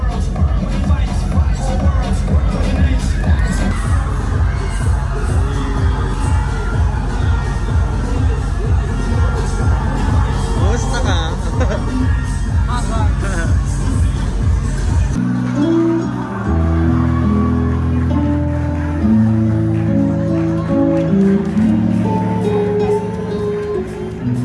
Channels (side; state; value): both; identical; correlation 1.00